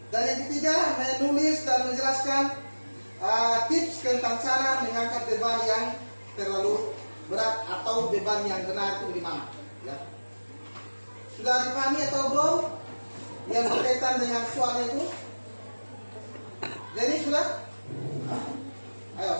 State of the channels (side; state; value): both; inverted; correlation -1.00